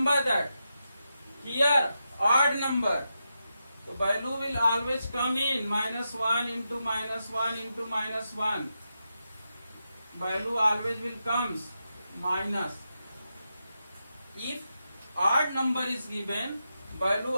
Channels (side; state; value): both; inverted; correlation -0.87